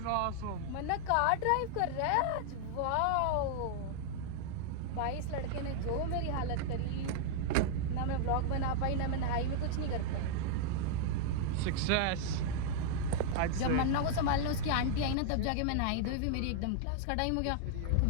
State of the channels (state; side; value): different; both; correlation -0.01